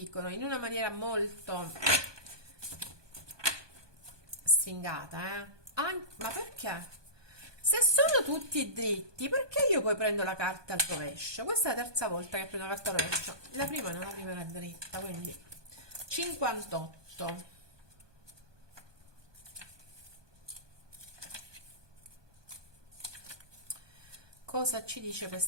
in una maniera molto stringata, ma perché? Se sono tutti dritti, perché io poi prendo la carta al rovescio? Questa è la terza volta che prendo la carta al rovescio. La prima no, la prima era dritta, quindi 58. Cosa ci dice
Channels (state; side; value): late; left; 1.2 ms